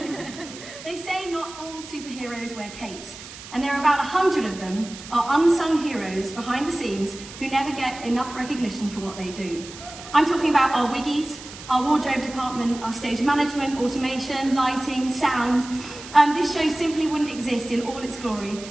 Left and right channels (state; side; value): noise; right; hiss, 15 dB below the sound